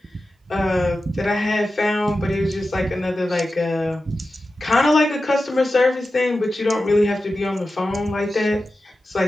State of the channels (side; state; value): both; normal; correlation 0.93